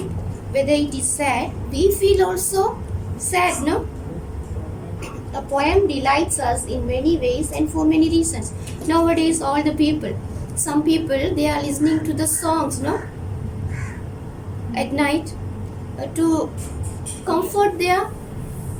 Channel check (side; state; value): both; identical; correlation 1.00